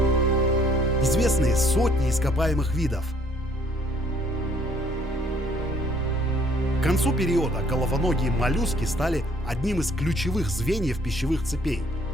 Известны сотни ископаемых видов. К концу периода головоногие моллюски стали одним из ключевых звеньев пищевых цепей.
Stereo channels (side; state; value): both; normal; correlation 0.62